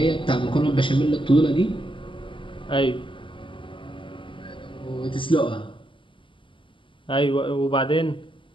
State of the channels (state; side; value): late; right; 0.25 ms